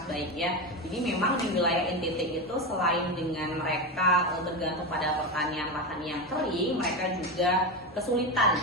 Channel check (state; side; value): normal; both; correlation 0.17